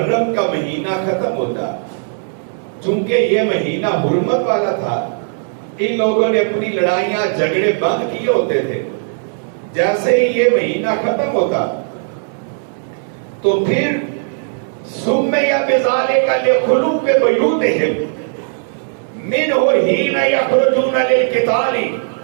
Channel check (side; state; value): left; silent; digital silence